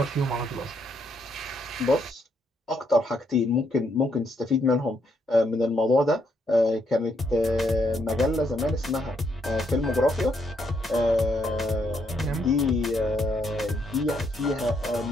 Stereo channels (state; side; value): normal; both; correlation 0.74